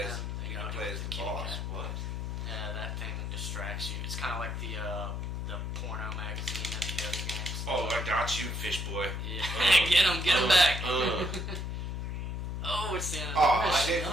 play as the boss. What? Yeah, that thing distracts you. It's kind of like the porno magazine and the other games. Oh, I got you, fish boy. Yeah, get him back. Oh, it's the end of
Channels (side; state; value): left; noise; hum, 3 dB below the sound